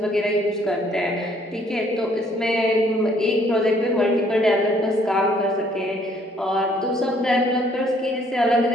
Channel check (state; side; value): normal; both; correlation 0.63